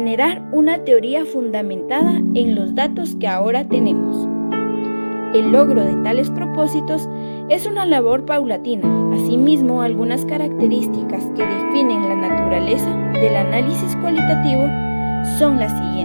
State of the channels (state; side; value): inverted; both; correlation -1.00